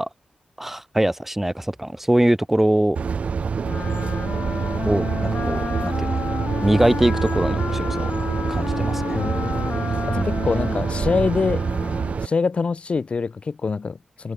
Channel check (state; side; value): normal; both; correlation 0.90